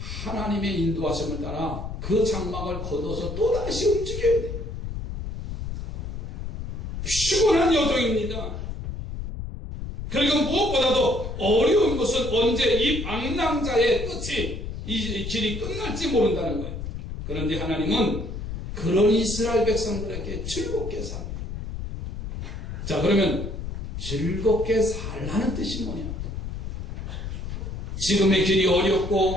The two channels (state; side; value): noise; left; rumble, 6 dB below the sound